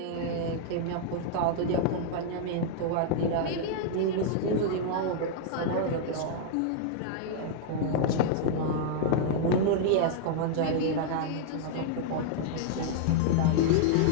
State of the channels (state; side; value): different; both; correlation -0.01